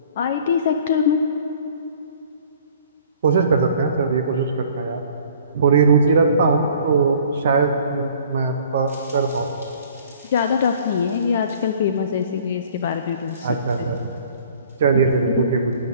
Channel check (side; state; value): both; inverted; correlation -0.53